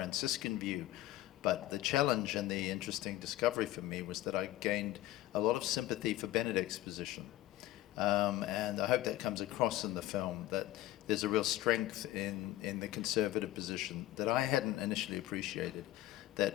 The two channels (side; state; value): right; quieter; 15.2 dB